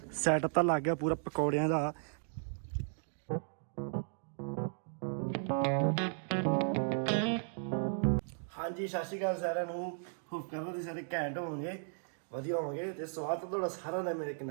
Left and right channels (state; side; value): silent; left; digital silence